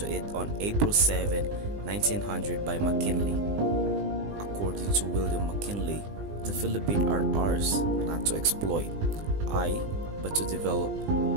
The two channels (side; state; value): left; late; 20 ms